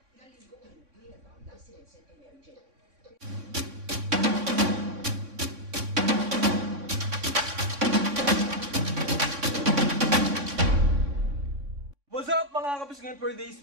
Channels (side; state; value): left; late; 3.6 ms